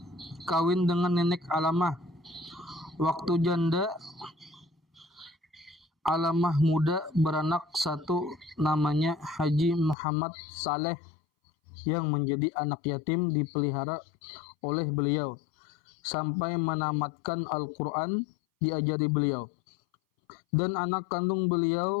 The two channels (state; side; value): drops out; right; at 10.0 s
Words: kawin dengan nenek Alamah. Waktu janda, Alamah muda beranak satu namanya Haji Muhammad Saleh yang menjadi anak yatim dipelihara oleh beliau sampai menamatkan Al-Quran diajari beliau. Dan anak kandung